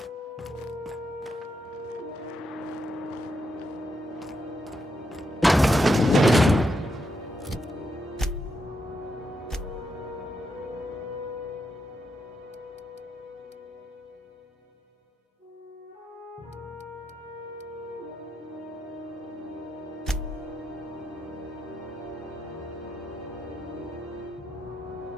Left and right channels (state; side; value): normal; both; correlation 0.82